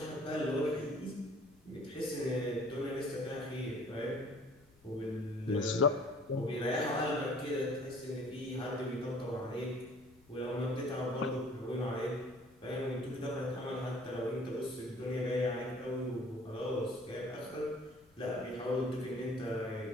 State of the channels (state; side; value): noise; left; rumble, 29 dB below the sound